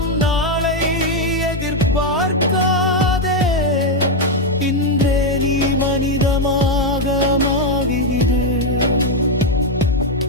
நாளை எதிர்பார்க்காதே. இன்றே நீ மனிதமாக மாறிடு.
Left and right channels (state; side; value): normal; both; correlation 0.03